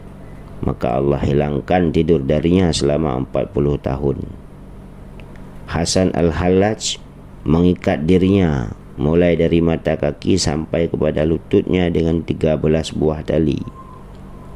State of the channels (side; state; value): both; identical; correlation 1.00